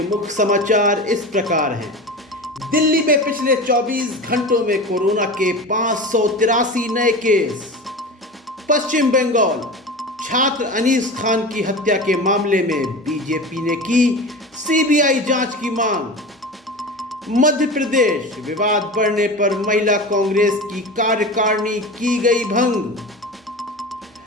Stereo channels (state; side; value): normal; both; correlation 0.30